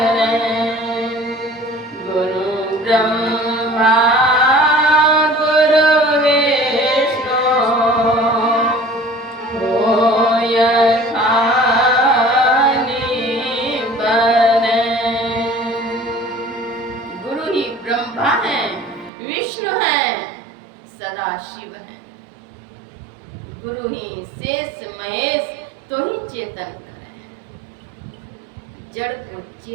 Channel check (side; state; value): left; drops out; at 19.1 s